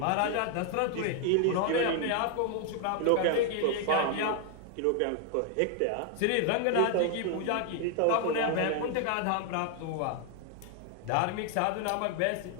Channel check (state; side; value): different; both; correlation 0.00